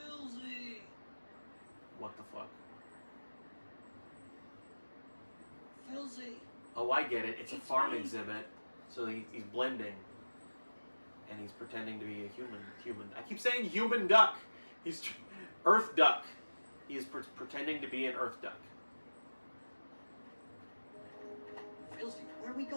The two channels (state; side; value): inverted; both; correlation -1.00